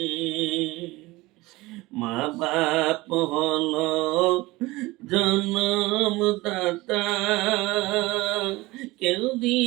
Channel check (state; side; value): quieter; left; 20.6 dB